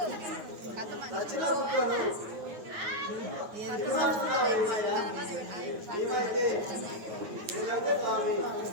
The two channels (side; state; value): left; late; 9.6 ms